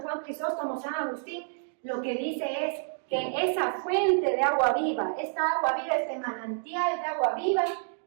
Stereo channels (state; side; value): silent; left; digital silence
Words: Juan Crisóstomo, San Agustín? Lo que dice es que esa fuente de agua viva, esta agua viva, este manantial de agua viva,